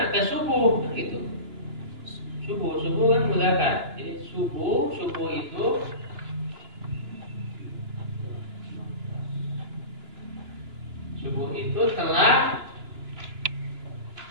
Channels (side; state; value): left; late; 2.9 ms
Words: Ke subuh gitu. Subuh kan mudzakkar. Jadi subuh itu telah